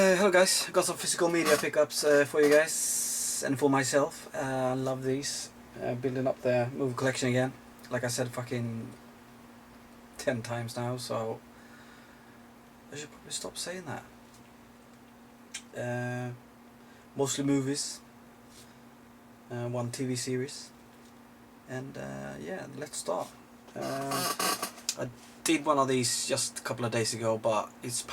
hello guys, got some physical media pickups for you guys and for myself. I love these. Building up the movie collection again. Like I said fucking 10 times now, so I should probably stop saying that. Mostly movies, one TV series, and yeah, let's start. I did one of these just a couple of days ago, but it's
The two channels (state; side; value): identical; both; correlation 1.00